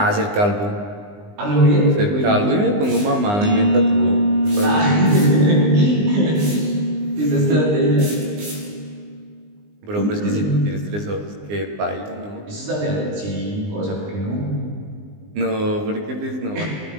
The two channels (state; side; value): late; left; 20 ms